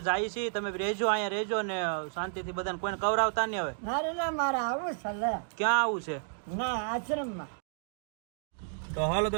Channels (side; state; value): left; silent; digital silence